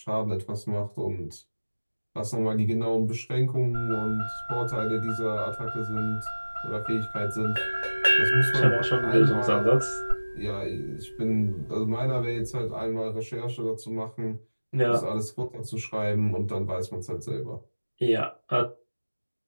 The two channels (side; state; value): both; inverted; correlation -1.00